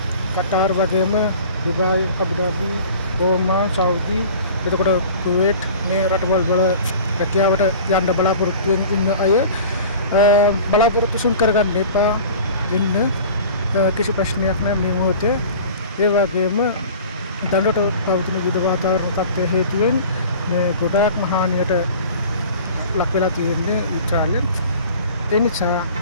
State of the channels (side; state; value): both; inverted; correlation -0.42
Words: කටාර් වගේම දුබායි, අබුදාබි, ඕමාන්, සෞදි, එතකොට කුවේට් මේ රටවල් වල රැකියාවට යන්න බලාපොරොත්තු වෙන අය බලාපොරොත්තු සුන් කරගන්න එපා. ඉන්න කිසි ප්‍රශ්නයක් නැහැ මේ මොහොතේ. ඒ වගේම දඬුවට පවතින විවිධ වාතාවරණ තත්ත්වය හේතුවෙන් මේ ගොඩාක් මහානියට ලක් වෙලා තියෙන්නේ ඉස්රායලෙන්. ඒ නිසා